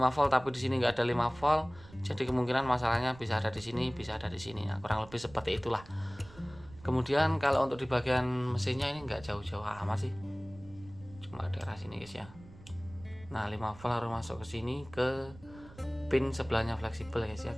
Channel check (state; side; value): noise; right; rumble, 20 dB below the sound